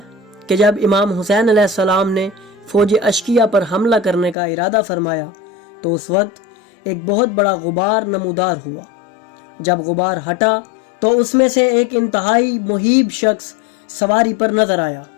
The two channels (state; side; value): drops out; right; at 4.4 s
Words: کہ جب امام حسین علیہ السلام نے فوج اشقیہ پر حملہ کرنے کا ارادہ فرمایا تو اس وقت ایک بہت بڑا غبار نمودار ہوا۔ جب غبار ہٹا تو اس میں سے ایک انتہائی مہیب شخص سواری پر نظر آیا۔